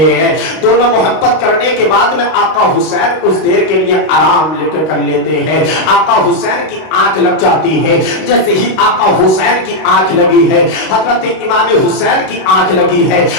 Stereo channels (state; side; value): late; right; 32 ms